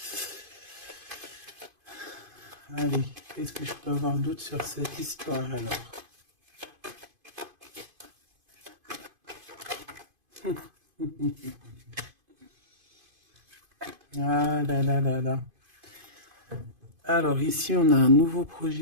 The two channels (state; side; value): late; left; 2.5 ms